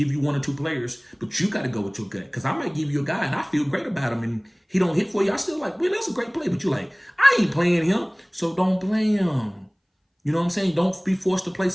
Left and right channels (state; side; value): identical; both; correlation 1.00